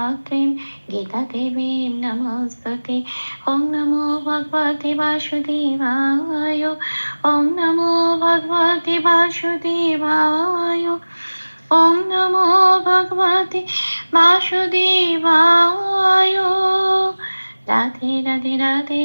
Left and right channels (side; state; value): both; inverted; correlation -1.00